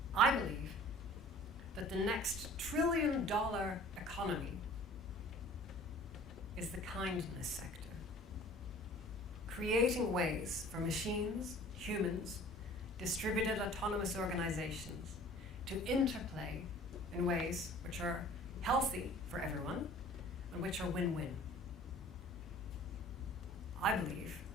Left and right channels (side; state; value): both; normal; correlation 0.48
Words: I believe that the next $1 trillion economy is the kindness sector. Creating ways for machines, humans, distributed autonomous organizations to interplay in ways which are healthy for everyone and which are win-win. I believe